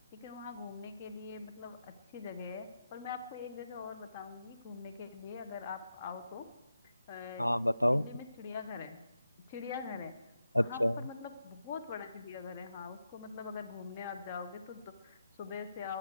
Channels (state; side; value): inverted; both; correlation -0.87